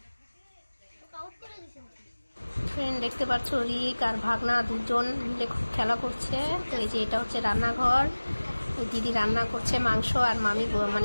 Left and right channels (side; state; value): both; inverted; correlation -1.00